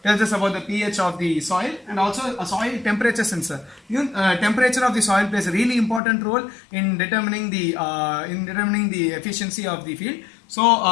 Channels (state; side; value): drops out; right; at 6.0 s